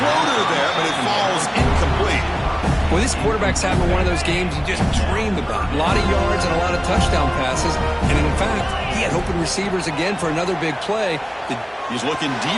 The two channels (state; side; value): identical; both; correlation 1.00